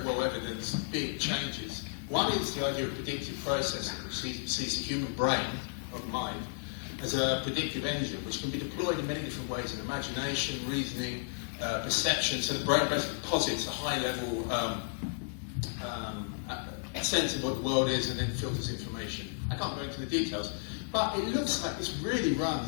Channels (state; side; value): silent; right; digital silence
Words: well evidenced big changes. One is the idea of predictive processing, which sees the human brain, or the mind, as a predictive engine, which can be deployed in many different ways in imagination, reasoning, perception. So the brain basically posits a high-level sense of what the world is and then filters information. I can't go into the details, but it looks like this really